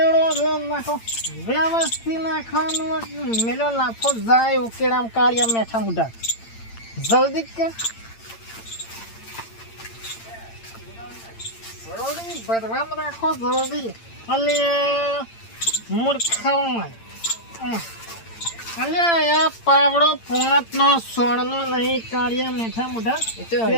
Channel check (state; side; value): late; right; 8.8 ms